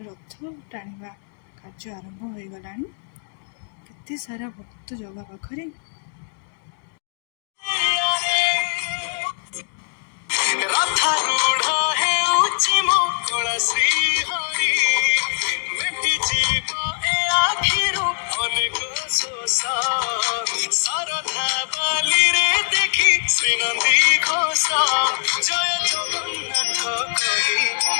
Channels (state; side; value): silent; right; digital silence